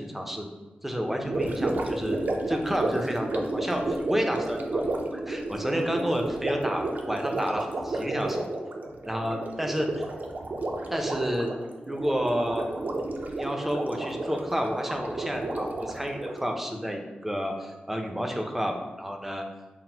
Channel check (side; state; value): both; normal; correlation 0.93